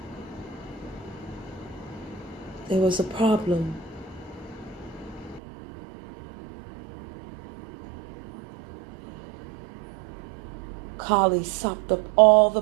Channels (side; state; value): left; drops out; at 5.4 s